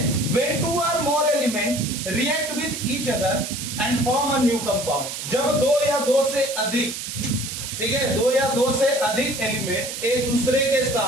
when two or more element react with each other and form a new compound, जब दो या दो से अधिक, ठीक है, दो या दो से अधिक एलिमेंट एक दूसरे के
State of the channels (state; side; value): noise; right; hiss, 7 dB below the sound